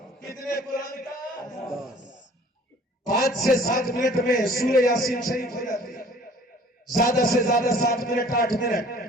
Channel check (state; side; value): normal; both; correlation 0.52